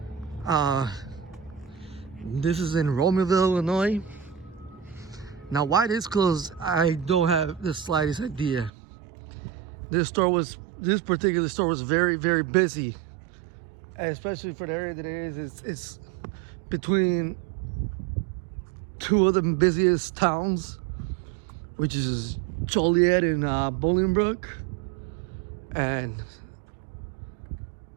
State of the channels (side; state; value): left; drops out; at 8.7 s